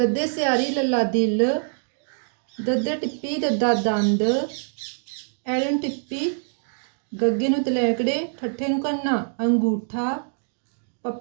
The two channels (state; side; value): silent; left; 62 dB below the other